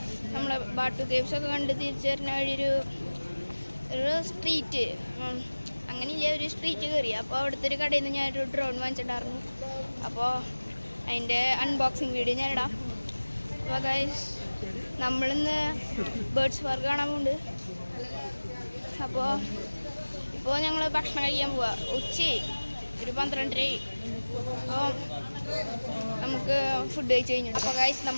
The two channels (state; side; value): inverted; both; correlation -1.00